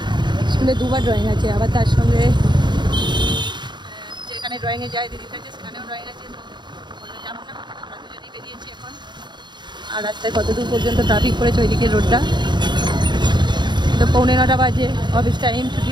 স্কুলে দুবার ড্রয়িং আছে, আবার তার সঙ্গে যেখানে ড্রয়িংয়ে যায় দিদির কাছে সেখানেও ড্রয়িং আছে, বললো যাবো না, আমরা দুজনেই বেরিয়েছি এখন। আর রাস্তায় কতদূর পর্যন্ত ট্রাফিক পড়েছে ওইদিকে রোডটা, তো 9:45 বাজে, অফিস টাইম, ছুটি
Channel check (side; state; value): left; late; 0.22 ms